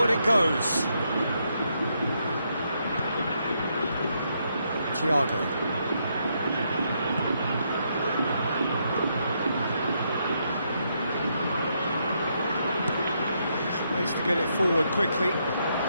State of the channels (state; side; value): inverted; both; correlation -0.78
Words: it goes. Thiago. Tries to get it forward quickly.